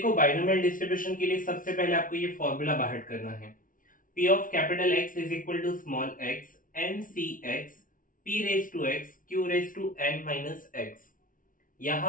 बाइनोमियल डिस्ट्रीब्यूशन के लिए सबसे पहले आपको ये फॉर्मूला बाहर करना है। P of capital X is equal to small x n c x p raise to x q raise to n minus x।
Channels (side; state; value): right; late; 0.39 ms